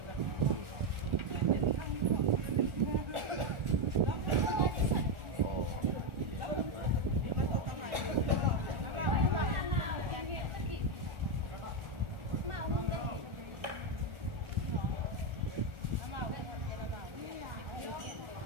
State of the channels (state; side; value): late; left; 1.4 ms